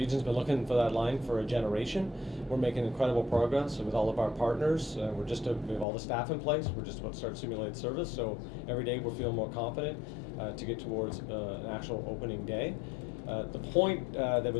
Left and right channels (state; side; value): drops out; right; at 5.9 s